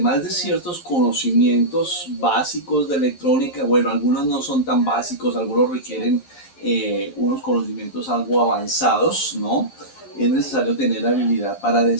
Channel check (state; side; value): late; right; 11 ms